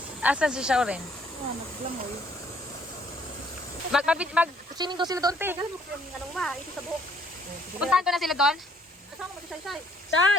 Asan si Shauren? Naglamoy. Mag-swimming daw sila doon, te. Anong ma? Ito sa buhok. Puntahan ko na sila doon. Kasama mo si Shai Shai.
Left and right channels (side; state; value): both; normal; correlation 0.63